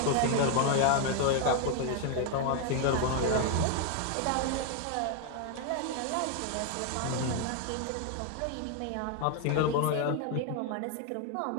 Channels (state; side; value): different; both; correlation 0.01